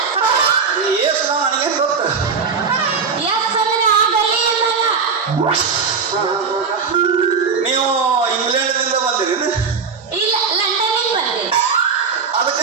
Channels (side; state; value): left; quieter; 5.5 dB